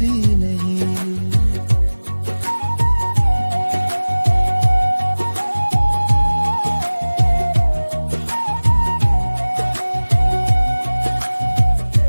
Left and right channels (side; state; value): both; inverted; correlation -1.00